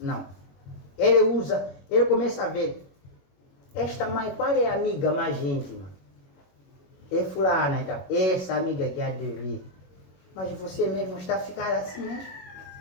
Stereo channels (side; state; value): right; late; 22 ms